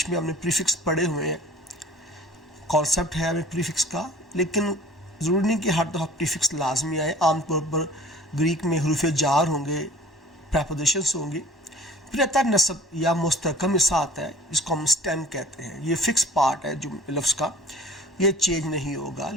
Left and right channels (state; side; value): normal; both; correlation 0.47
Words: में हमने प्रीफिक्स पढ़े हुए हैं, कॉन्सेप्ट है हमें प्रीफिक्स का, लेकिन ज़रूरी नहीं कि हर दफ़ा प्रीफिक्स लाजमी आए। आमतौर पर ग्रीक में हरूफ जार होंगे, प्रेपोजिशंस होंगी। फिर आता है नस्ब या मुस्तहकम हिस्सा आता है, जिसको हम स्टेम कहते हैं। ये फिक्स पार्ट है जो लफ्ज़ का, ये चेंज नहीं होगा।